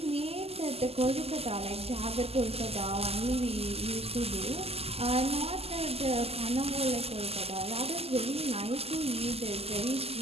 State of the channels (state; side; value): late; left; 0.29 ms